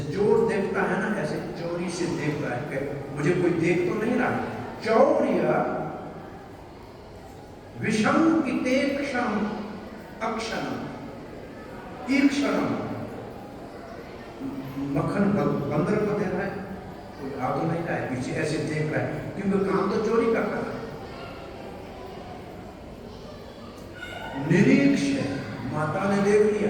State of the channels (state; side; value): identical; both; correlation 1.00